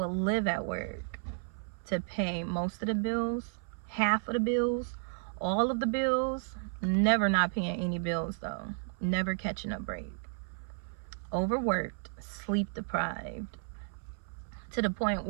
live at work to pay most of the bills, half of the bills, all of the bills, never not paying any bills though, never catching a break. Overworked, sleep deprived, to the point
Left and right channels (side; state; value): left; silent; 56 dB below the other